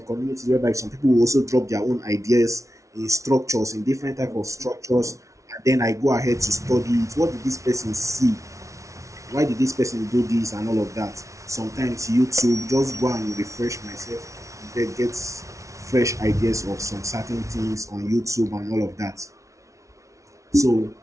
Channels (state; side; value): late; left; 0.15 ms